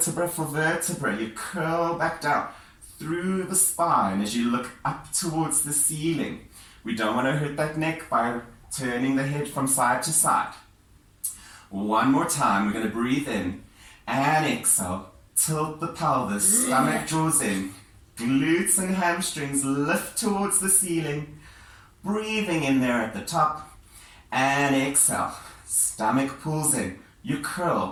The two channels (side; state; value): both; identical; correlation 1.00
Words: for vertebra. You curl back down through the spine as you look up towards the ceiling. We don't want to hurt that neck by turning the head from side to side. One more time, we're going to breathe in and exhale. Tilt the pelvis, stomach draws in. Glutes and hamstrings lift towards the ceiling. Breathing in there at the top. And exhale. Stomach pulls in. You